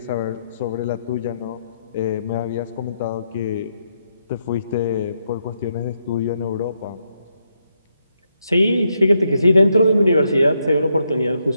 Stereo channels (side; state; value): both; inverted; correlation -0.80